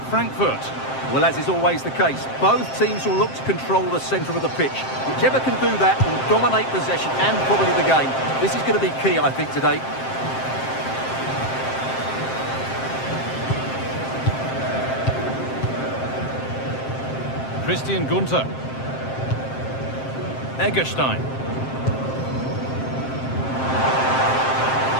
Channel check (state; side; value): late; right; 7.6 ms